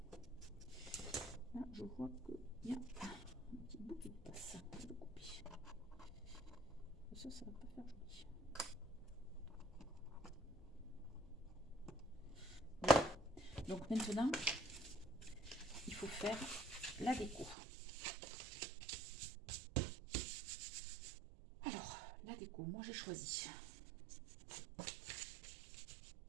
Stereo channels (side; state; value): left; drops out; at 17.6 s